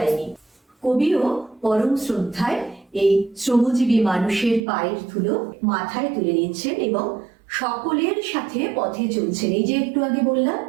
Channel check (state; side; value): drops out; left; at 4.6 s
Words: নিই। কবিও পরম শ্রদ্ধায় এই শ্রমজীবী মানুষের পায়ের ধুলো মাথায় তুলে নিচ্ছেন এবং সকলের সাথে পথে চলছেন। এই যে একটু আগে বললাম,